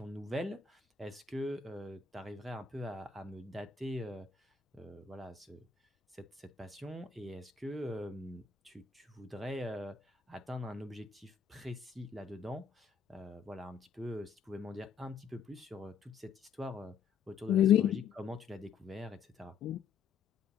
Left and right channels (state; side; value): quieter; right; 6.6 dB